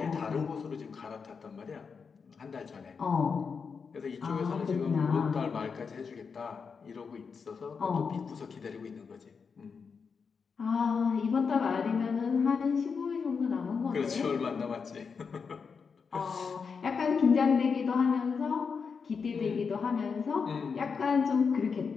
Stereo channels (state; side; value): quieter; right; 5.6 dB